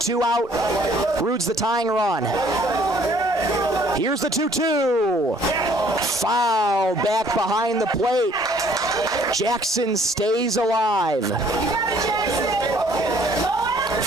out. Rude's the tying run. Here's the 2-2. Foul back behind the plate. Jackson stays alive.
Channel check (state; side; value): normal; both; correlation 0.59